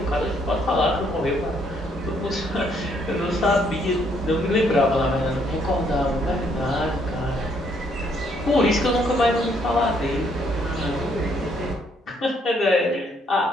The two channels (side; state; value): both; normal; correlation 0.69